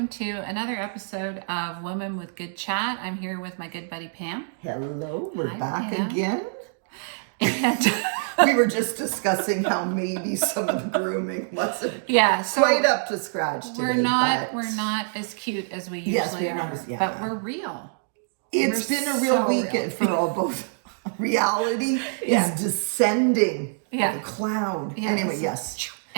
to another episode of Women with Good Chat. I'm here with my good buddy Pam. Hello, we're Hi, back Pam. again. And We were just discussing how maybe some of the grooming wasn't so quite up to scratch today. we're not but as cute as we Yes, usually we're not are, as- yeah. but we're real. it's We're been a real so weekend for all both. Reality Yeah. is descending Yeah. like a cloud. Yeah, Anyway, it's- yes.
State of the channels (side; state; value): left; silent; digital silence